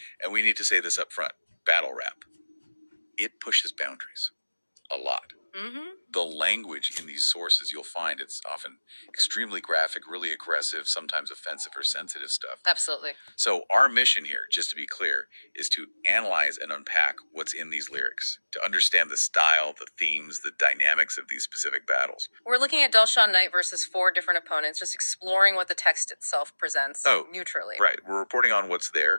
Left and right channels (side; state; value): both; inverted; correlation -1.00